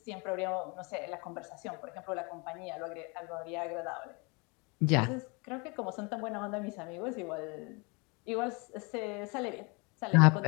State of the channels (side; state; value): right; quieter; 30.0 dB